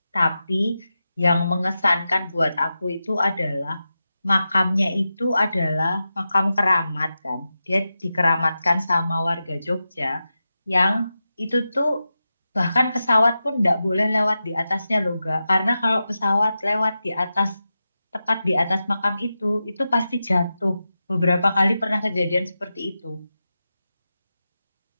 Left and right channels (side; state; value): both; inverted; correlation -0.91